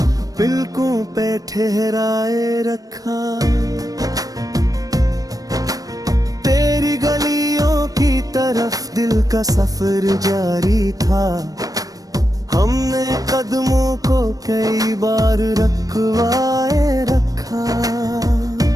पलकों पे ठहराए रखा। तेरी गलियों की तरफ दिल का सफर जारी था, हमने कदमों को कई बार रखवाए रखा।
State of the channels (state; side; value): late; left; 0.18 ms